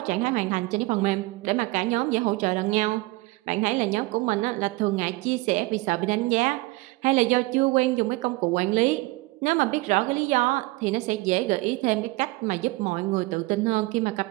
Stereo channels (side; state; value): left; quieter; 22.3 dB